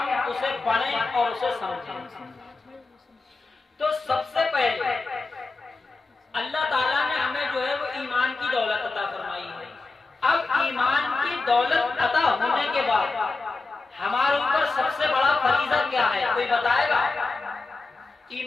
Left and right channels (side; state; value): right; quieter; 3.7 dB